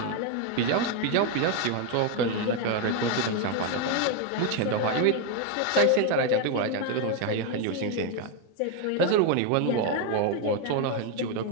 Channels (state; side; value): different; both; correlation 0.01